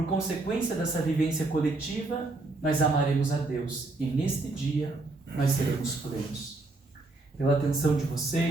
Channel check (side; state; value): left; quieter; 3.2 dB